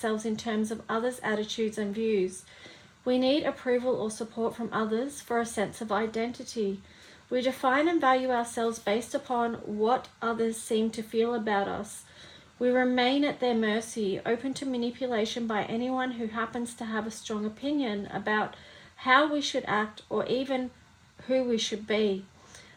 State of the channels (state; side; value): identical; both; correlation 1.00